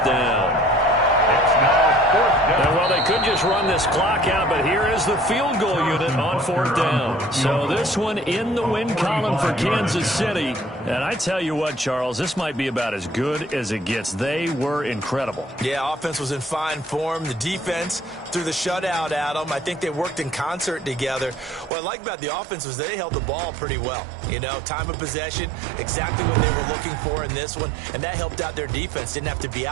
down. It's now 4th down. And well, they could just run this clock out, but here is the field goal unit on 4th down. So this one in the win column for Kansas City. And I tell you what, Charles, this might be about as good as it gets. They were incredible. Yeah, offense was in fine form. The defense threw the shutout at them. I think they worked in concert together. What I like about the offense was they held the ball pretty well. You know, time of possession, exactly what they were looking for in this one. And that helped out their defense. Didn't have to be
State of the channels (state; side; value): drops out; left; at 21.7 s